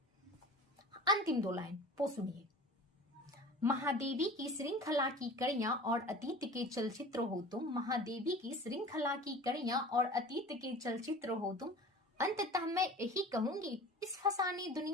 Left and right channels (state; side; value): normal; both; correlation 0.40